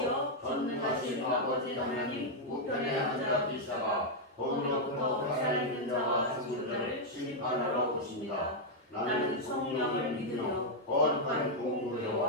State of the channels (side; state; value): both; normal; correlation -0.01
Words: 전능하신 아버지 하나님 우편에 앉아 계시다가 거기로부터 살아있는 자와 죽은 자를 심판하러 오십니다. 나는 성령을 믿으며 거룩한